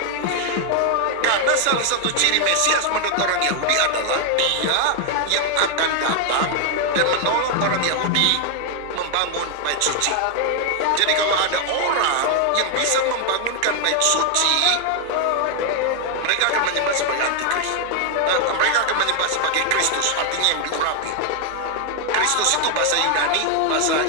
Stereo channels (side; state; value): both; different; correlation 0.00